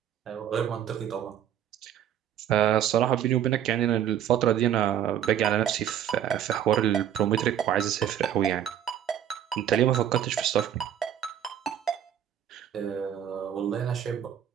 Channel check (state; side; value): quieter; left; 10.1 dB